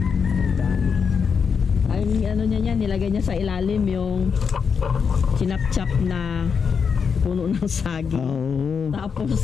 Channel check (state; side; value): quieter; right; 6.2 dB